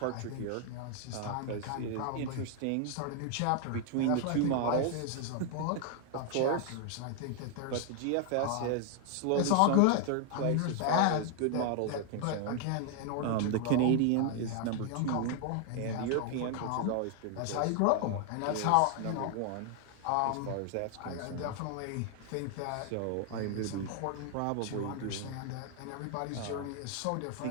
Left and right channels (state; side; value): different; both; correlation 0.00